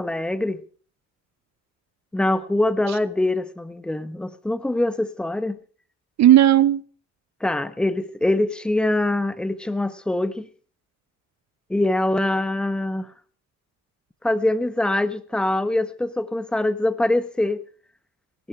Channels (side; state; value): both; normal; correlation 0.65